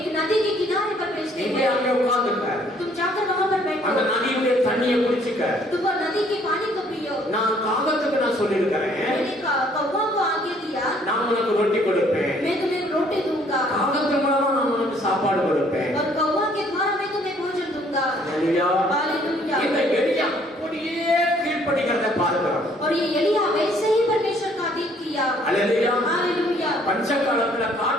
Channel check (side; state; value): both; normal; correlation 0.62